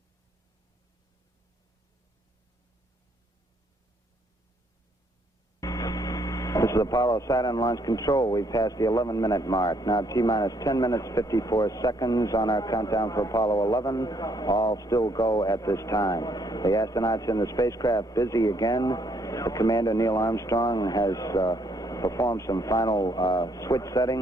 This is Apollo Saturn Launch Control. We've passed the 11-minute mark. Now T-minus 10 minutes, 54 seconds on our countdown for Apollo 11. All still go at this time. The astronauts in the spacecraft busy again. The commander, Neil Armstrong, has performed some final switch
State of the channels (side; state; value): both; normal; correlation 0.69